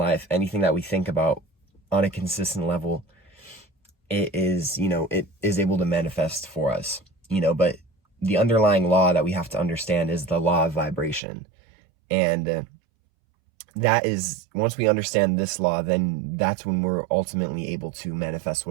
anything that we think about on a consistent level, it is able to manifest for us, but the underlying law that we have to understand is the law of vibration. And that is, once we understand this law, then that's when we're ultimately able to manifest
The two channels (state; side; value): drops out; left; at 11.2 s